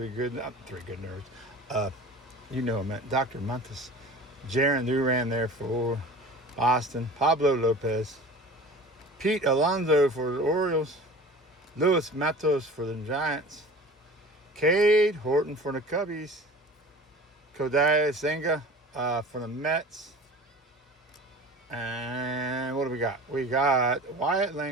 good nerds. You know him, Dr. Montes. Jaron Duran there for Boston. Pablo Lopez. Pete Alonso for the Orioles. Luis Matos for the Giants. Cade Horton for the Cubbies. Kodai Senga for the Mets. And what do we got? We got Wyatt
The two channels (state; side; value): normal; both; correlation 0.40